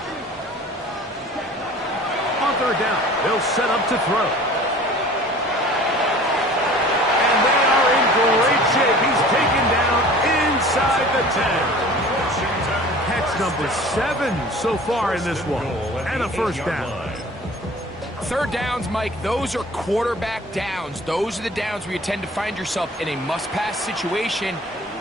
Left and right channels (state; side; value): normal; both; correlation 0.45